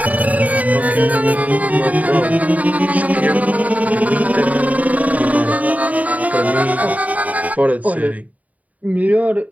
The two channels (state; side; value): late; left; 0.072 ms